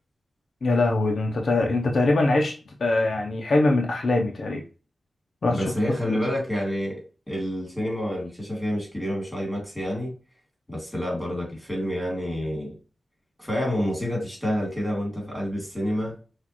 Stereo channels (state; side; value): normal; both; correlation 0.91